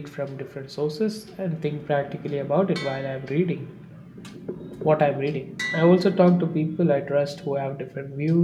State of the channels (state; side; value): identical; both; correlation 1.00